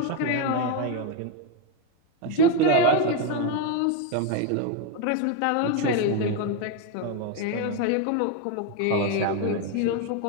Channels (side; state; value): both; different; correlation 0.02